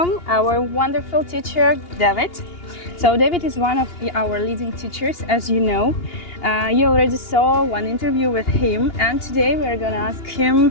our wonderful teacher David. So David is one of our leading teachers, as you know. You already saw one interview with him, and today we're gonna ask him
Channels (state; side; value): late; right; 2.8 ms